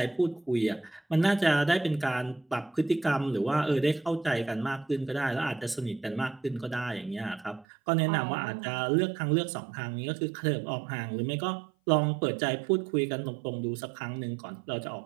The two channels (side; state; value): left; drops out; at 7.7 s